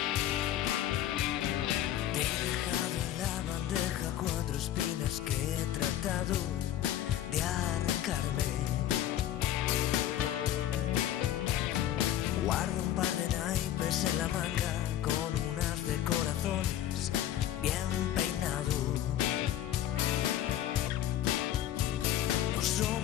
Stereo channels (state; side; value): quieter; right; 12.0 dB